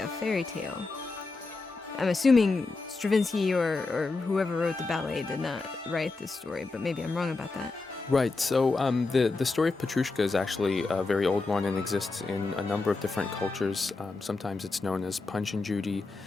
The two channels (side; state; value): right; quieter; 3.7 dB